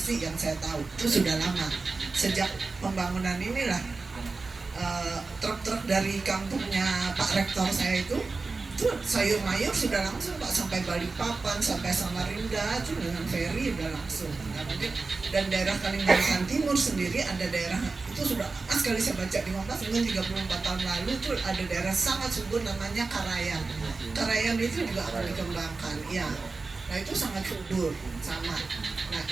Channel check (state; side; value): quieter; left; 3.9 dB